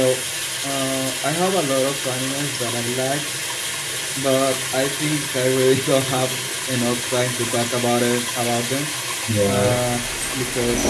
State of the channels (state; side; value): identical; both; correlation 1.00